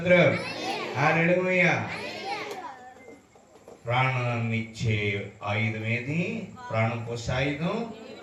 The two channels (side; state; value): both; identical; correlation 1.00